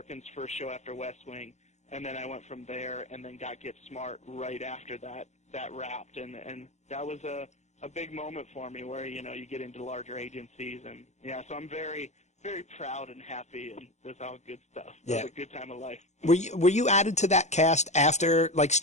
first show after West Wing, and then I went from there and then got Get Smart right after that wrapped, and that was a big moment for me where, you know, you get into larger agencies, and yeah, so I'm very, very proud and happy, and that's all good stuff. It was a good time of life. Were you added to that cast after, like,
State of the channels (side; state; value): right; late; 0.33 ms